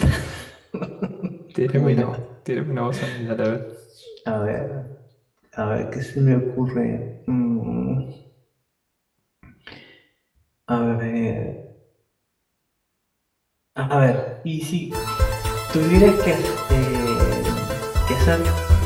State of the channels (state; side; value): identical; both; correlation 1.00